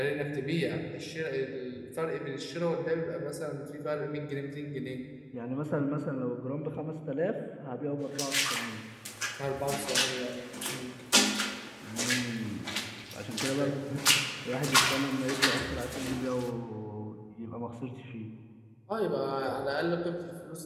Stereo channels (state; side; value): identical; both; correlation 1.00